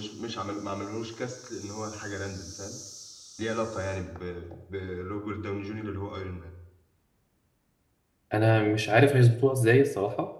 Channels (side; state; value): both; identical; correlation 1.00